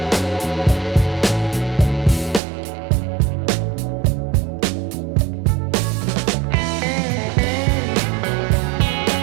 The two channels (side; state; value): left; drops out; at 2.4 s